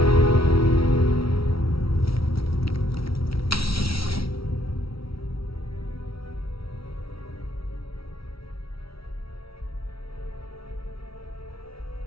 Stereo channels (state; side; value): late; right; 0.75 ms